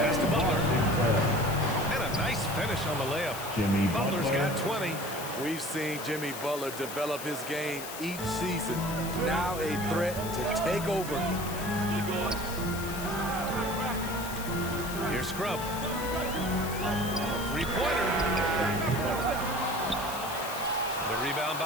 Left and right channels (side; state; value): left; noise; hiss, 10 dB below the sound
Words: to Butler. And a nice finish on the layup. Jimmy Butler's Butler. got 20. We've seen Jimmy Butler develop his game each season. Now a threat to take over. Here's Scrub. Three-pointer. The rebound